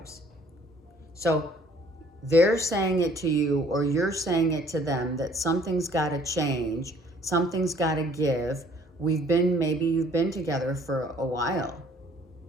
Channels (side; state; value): both; normal; correlation 0.58